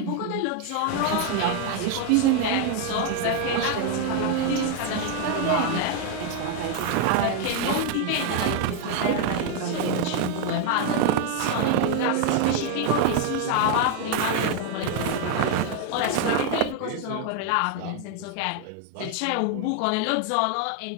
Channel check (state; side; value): different; both; correlation 0.00